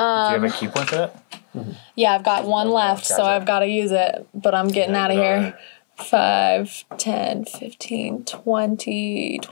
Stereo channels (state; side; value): silent; right; 60 dB below the other